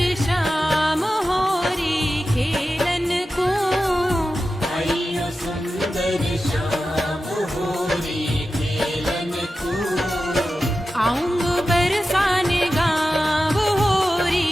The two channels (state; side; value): normal; both; correlation 0.93